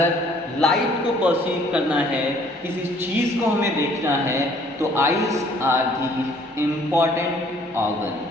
लाइट को परसीव करना है, किसी चीज़ को हमें देखना है, तो eyes are the important organ.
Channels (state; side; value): normal; both; correlation 0.59